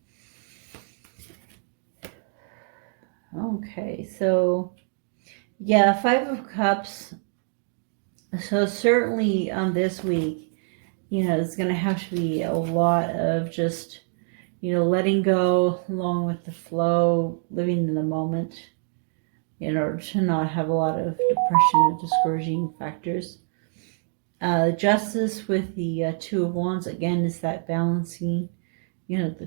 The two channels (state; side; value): silent; left; 59 dB below the other